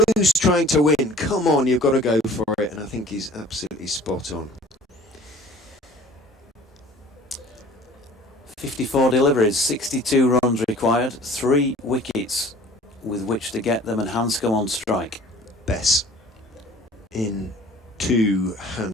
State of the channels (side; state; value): both; normal; correlation 0.48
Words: trying to win. Come on, you've got to go for it. And I think he's absolutely spot on. 54 deliveries, 62 runs required, 3 wickets with which to get them, and Hanscom on strike. Bess in 2